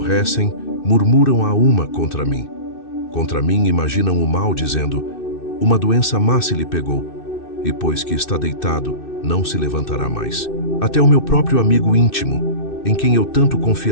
murmuram a uma contra mim. Contra mim imaginam o mal, dizendo: uma doença má se lhe pegou. E pois que está deitado, não se levantará mais. Até o meu próprio amigo íntimo, em quem eu tanto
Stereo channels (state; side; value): late; right; 2.6 ms